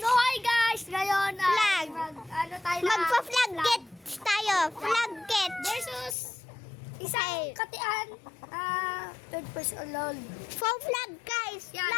hi guys! Ngayon, Flag. ano tayo na? magpa-flag get tayo. Flag get. Versus isang katian, third person alone. For flag guys. Yan,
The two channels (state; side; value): drops out; right; at 6.2 s